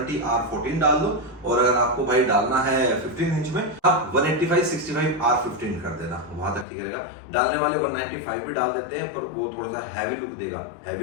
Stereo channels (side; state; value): right; drops out; at 6.7 s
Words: R14 डाल दो, और अगर आपको भाई डालना है 15 इंच में आप 185 65 R15 कर देना, वहां तक ठीक रहेगा। डालने वाले 195 भी डाल देते हैं, पर वो थोड़ा सा हैवी लुक देगा।